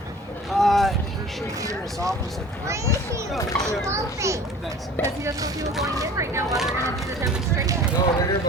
should be in his office. Because he doesn't know if he was going in right now while they're going to do the demonstration.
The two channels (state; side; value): normal; both; correlation 0.44